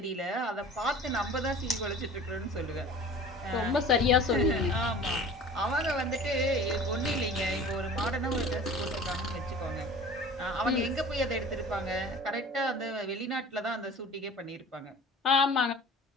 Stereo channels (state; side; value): normal; both; correlation 0.42